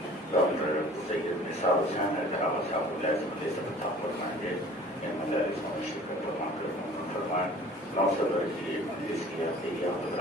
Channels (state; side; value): normal; both; correlation 0.47